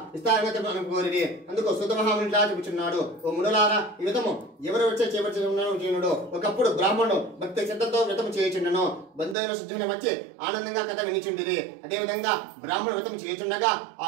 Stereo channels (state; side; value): drops out; left; at 9.3 s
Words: ఇస్తారని కోరిరి. అందుకు సుతమహాముని ఇట్లా చెబుతున్నాడు, ఓ మునులారా, ఈ వ్రతము ఎవరు వచ్చే చేపడుతున్నాడు. ఒకప్పుడు బ్రాహ్మణుడు భక్తి శ్రద్ధతో వ్రతం చేయుచుండెను. బంధువుల శుద్ధుని వచ్చి ఆనందంగా కథ వినిచుండిరి. అదేవిధంగా బ్రాహ్మణ వ్రతం చేయుచుండగా ఆ